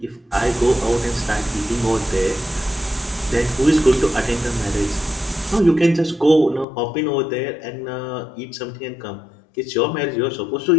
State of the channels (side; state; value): right; drops out; at 6.7 s